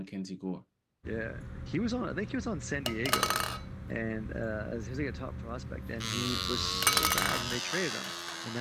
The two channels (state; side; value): identical; both; correlation 1.00